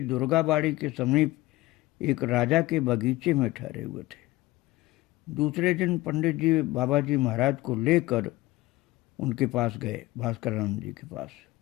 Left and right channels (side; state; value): right; quieter; 18.9 dB